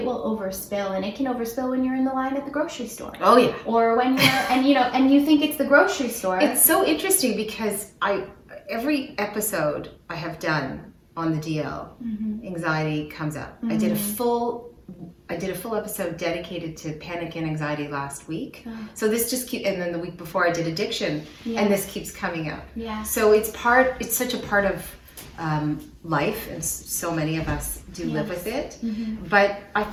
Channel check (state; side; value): identical; both; correlation 1.00